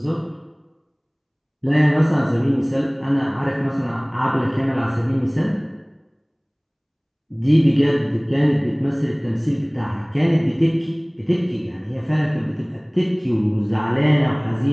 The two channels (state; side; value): identical; both; correlation 1.00